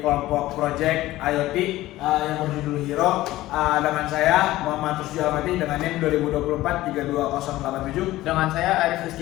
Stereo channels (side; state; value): right; quieter; 16.4 dB